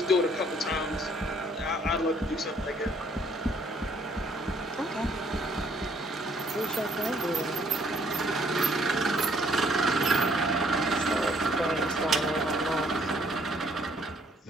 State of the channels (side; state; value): both; normal; correlation 0.64